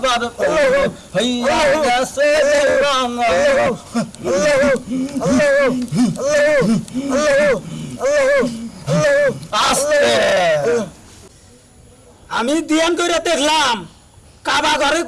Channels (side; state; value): both; identical; correlation 1.00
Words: প্রেমে হইয়া গেছে দিওয়ানা। আস্তে আমি ধ্যান করে দেখলাম কাবা ঘরে